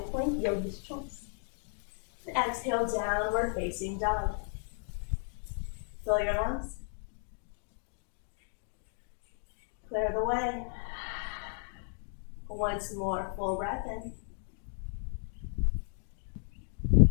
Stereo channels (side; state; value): right; silent; 55 dB below the other